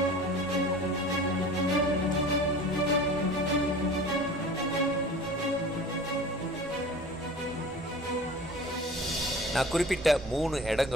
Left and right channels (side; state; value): both; normal; correlation 0.40